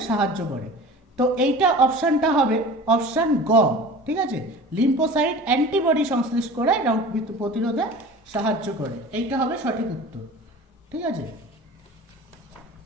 সাহায্য করে। তো এইটা অপশানটা হবে অপশান গ, ঠিক আছে? লিম্ফোসাইট অ্যান্টিবডি সংশ্লেষ করে রোগ প্রতিরোধে সাহায্য করে, এইটা হবে সঠিক উত্তর, ঠিক আছে?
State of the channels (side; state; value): both; normal; correlation 0.39